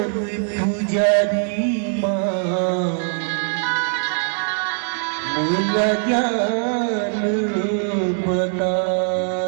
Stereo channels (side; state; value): left; silent; digital silence